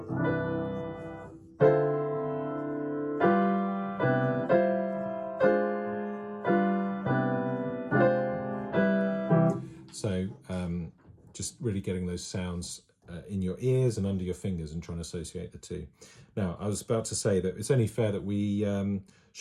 So just really getting those sounds in your ears and under your fingers and trying to associate the two. Now, I was about to say that it's only fair that we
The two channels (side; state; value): both; identical; correlation 1.00